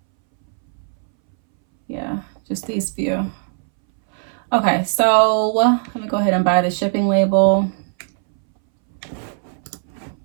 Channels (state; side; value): silent; left; 64 dB below the other